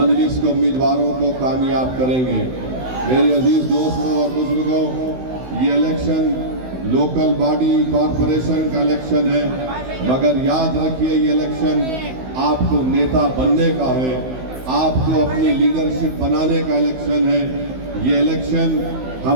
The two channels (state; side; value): late; left; 16 ms